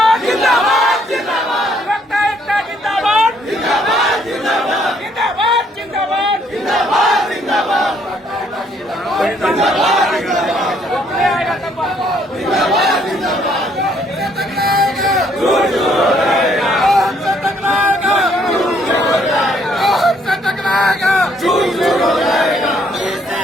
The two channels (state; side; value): normal; both; correlation 0.67